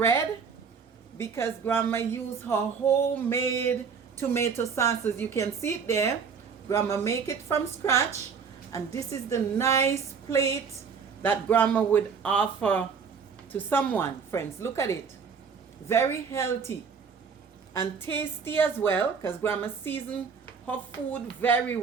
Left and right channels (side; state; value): left; quieter; 6.0 dB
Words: because grandma used her homemade tomato sauce. As you can see it there, grandma make it from scratch. And this is the nice plate that grandma would offer to someone. Friends, look at it. Very healthy and tasty as well because grandma seasoned her food very